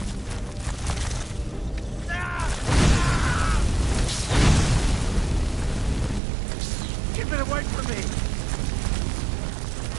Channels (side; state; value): left; drops out; at 6.2 s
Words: Keep it away from me!